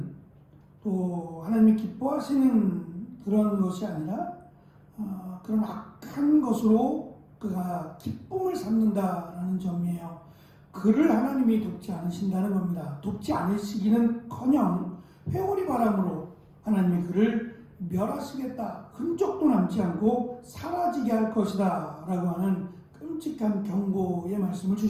또 하나님이 기뻐하시는 그런 것이 아니라 그런 악한 것으로 그가 기쁨을 삼는다라는 점이에요. 그를 하나님이 돕지 않으신다는 겁니다. 돕지 않으시기는커녕 회오리 바람으로 하나님이 그를 멸하시겠다, 흔적도 남지 않고 사라지게 할 것이다 라고 하는 끔찍한 경고의 말씀을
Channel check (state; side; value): identical; both; correlation 1.00